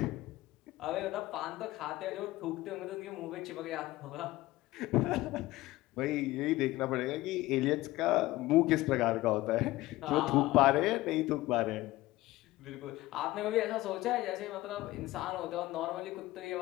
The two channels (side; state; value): right; quieter; 17.8 dB